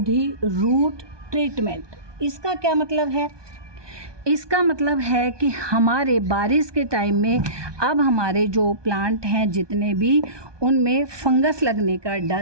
रूट ट्रीटमेंट। इसका क्या मतलब है? इसका मतलब है कि हमारे बारिश के टाइम में अब हमारे जो प्लांट हैं जितने भी, उनमें फंगस लगने का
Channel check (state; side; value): late; left; 1.2 ms